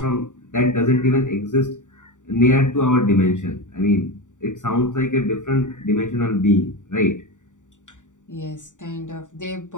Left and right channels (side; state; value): right; late; 0.86 ms